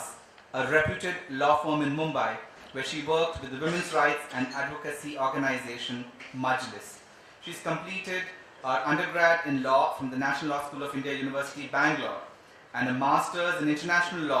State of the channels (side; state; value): both; identical; correlation 1.00